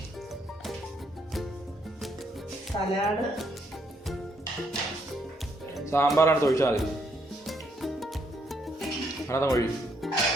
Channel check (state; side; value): normal; both; correlation 0.73